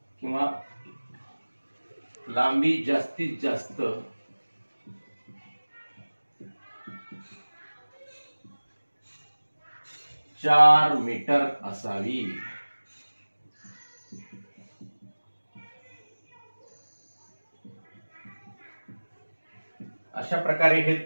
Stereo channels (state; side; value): inverted; both; correlation -1.00